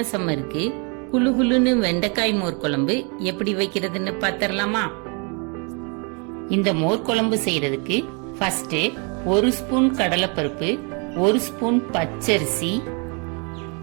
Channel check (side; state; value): left; quieter; 34.7 dB